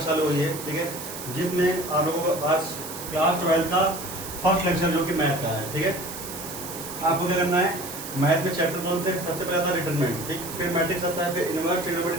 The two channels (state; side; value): noise; right; hiss, 10 dB below the sound